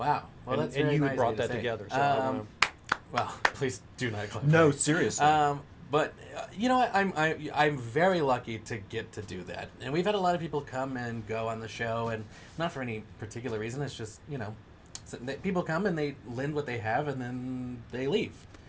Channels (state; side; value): identical; both; correlation 1.00